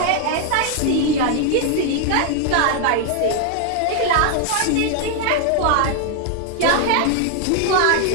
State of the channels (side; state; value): both; different; correlation 0.00